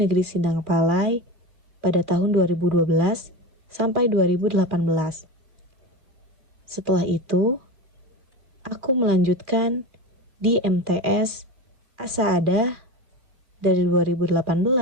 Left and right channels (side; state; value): left; late; 2.4 ms